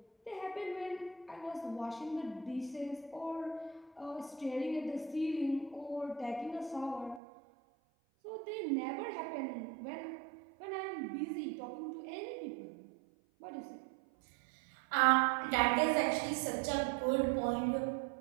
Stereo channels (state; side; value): drops out; left; at 7.2 s